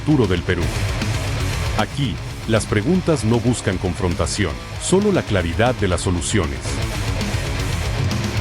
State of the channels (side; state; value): both; identical; correlation 1.00